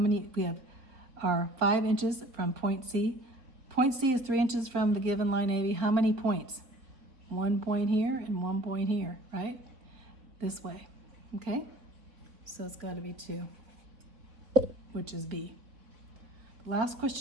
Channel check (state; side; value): late; left; 4.1 ms